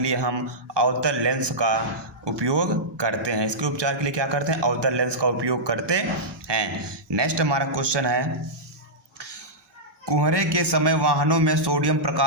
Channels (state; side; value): late; left; 1.2 ms